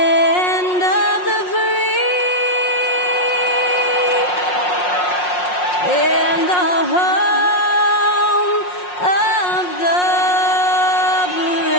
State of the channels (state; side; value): late; right; 5.5 ms